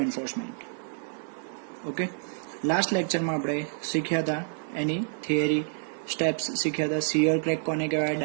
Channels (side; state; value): left; silent; digital silence